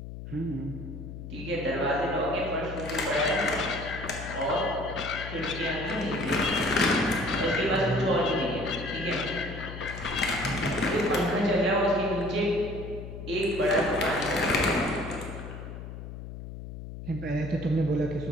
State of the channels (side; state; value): left; noise; hum, 10 dB below the sound